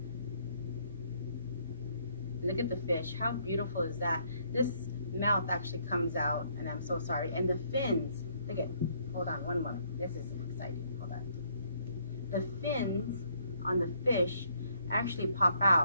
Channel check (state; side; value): inverted; both; correlation -0.68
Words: Look at the fish. How beautiful is that? This mouth actually comes out, and I'm so sorry. And the fins, look at, hold on one moment. This is exciting. Hold on. The fins on the fish actually pop